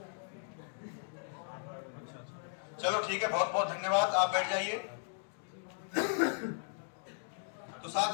चलो ठीक है, बहुत बहुत धन्यवाद, आप बैठ जाइए। तो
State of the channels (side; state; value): right; silent; digital silence